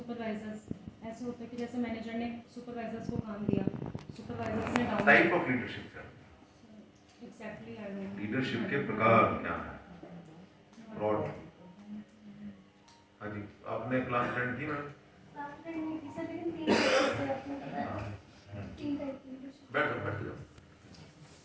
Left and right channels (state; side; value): identical; both; correlation 1.00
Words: ऐसे होता है कि जैसे मैनेजर ने सुपरवाइजर्स को काम दिया, सुपरवाइजर्स ने डाउन टाइप ऑफ लीडरशिप क्या? Exactly I don't know. Leadership के प्रकार क्या है? ब्रॉड। हाँ जी, आपने क्लास अटेंड की मैम? बैठ जाओ, बैठ जाओ।